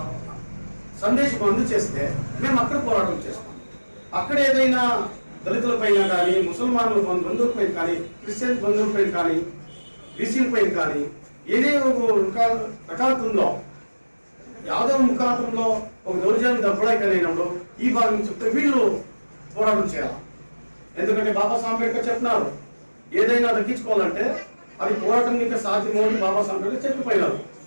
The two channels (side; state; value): both; inverted; correlation -1.00